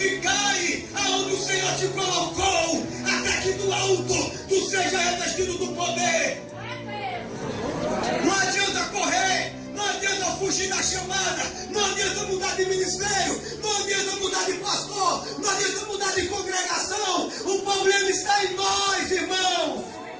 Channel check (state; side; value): identical; both; correlation 1.00